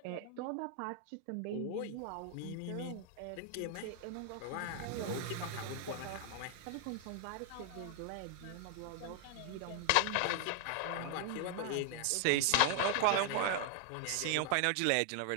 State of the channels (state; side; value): different; both; correlation 0.00